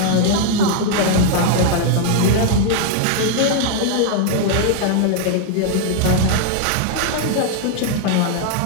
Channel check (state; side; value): different; both; correlation 0.00